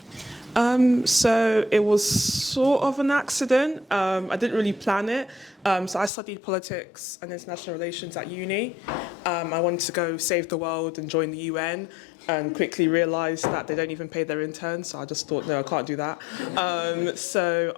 So it was sort of an accident. I didn't really plan it. So I studied politics and international relations at uni. I wanted to go save the world and join the UN, and quickly realised that they don't even pay their interns. So I just thought, no, I can't do that. So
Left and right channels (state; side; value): drops out; right; at 6.1 s